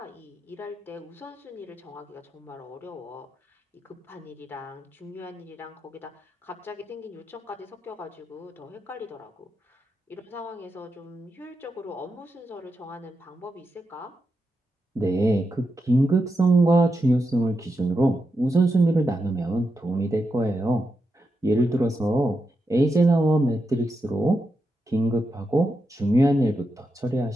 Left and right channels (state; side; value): normal; both; correlation 0.86